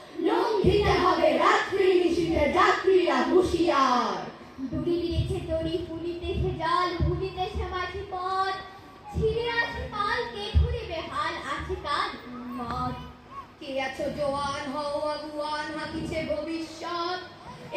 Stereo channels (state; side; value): identical; both; correlation 1.00